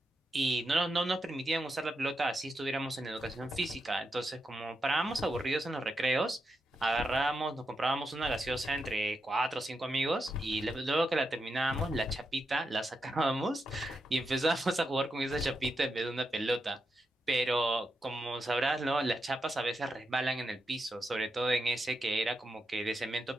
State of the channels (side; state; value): both; normal; correlation 0.86